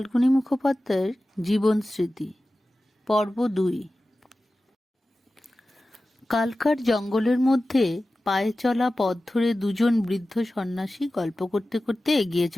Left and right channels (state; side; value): normal; both; correlation 0.95